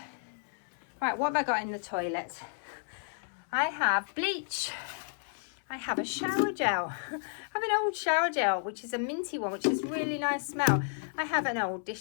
Right, what have I got in the toilet? I have bleach. I have a shower gel. I have an old shower gel, which is a minty one, which is really nice smell. I have an old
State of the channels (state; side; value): silent; right; 56 dB below the other